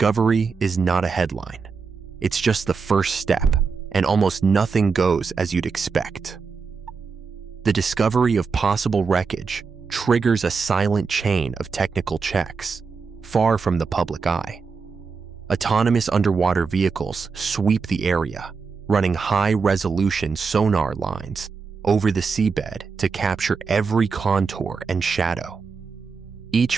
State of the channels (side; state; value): left; quieter; 5.2 dB